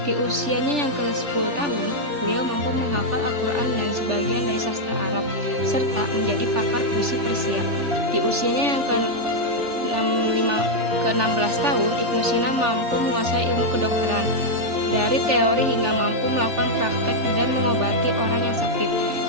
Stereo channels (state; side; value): late; left; 3.4 ms